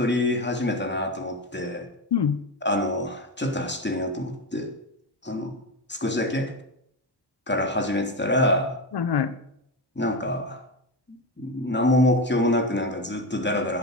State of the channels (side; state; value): both; normal; correlation 0.16